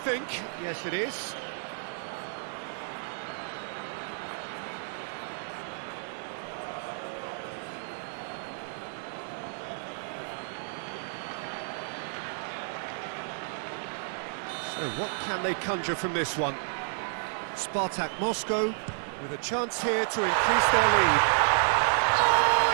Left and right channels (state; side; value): silent; left; 57 dB below the other